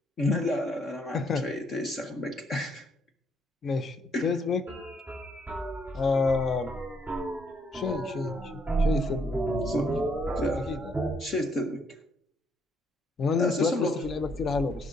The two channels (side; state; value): both; normal; correlation 0.71